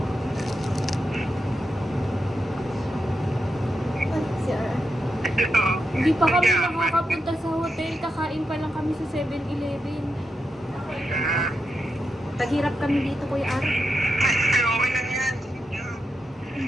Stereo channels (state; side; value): normal; both; correlation 0.86